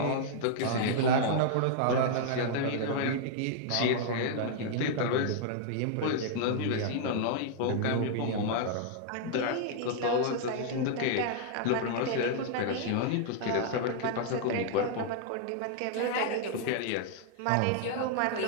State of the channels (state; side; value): different; both; correlation -0.01